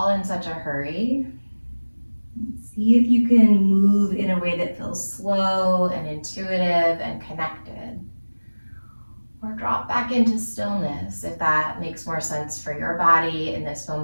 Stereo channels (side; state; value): both; inverted; correlation -1.00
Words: in such a hurry. See if you can move in a way that feels slow and intuitive and connected. Or drop back into stillness if that makes more sense for your body in this